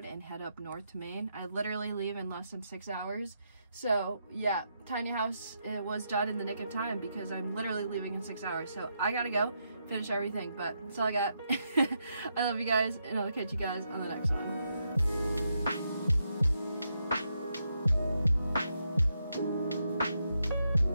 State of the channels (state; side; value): inverted; both; correlation -0.81